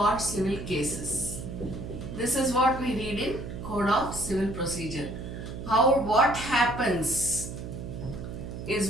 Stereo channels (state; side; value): noise; right; hum, 8 dB below the sound